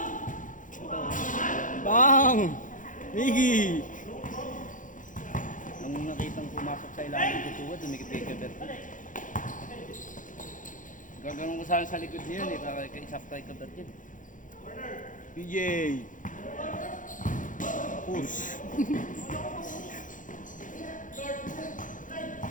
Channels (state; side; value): late; right; 0.38 ms